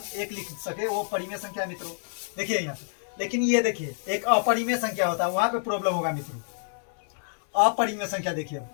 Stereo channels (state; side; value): silent; right; digital silence